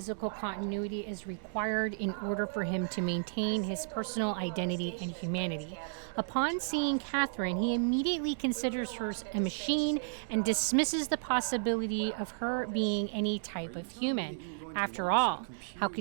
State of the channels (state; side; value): silent; left; digital silence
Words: continuity is required in order for him to maintain his personal identity and humanity. Upon seeing Catherine, he immediately considers her a machine and dismisses the possibility of her being any type of human. After all, how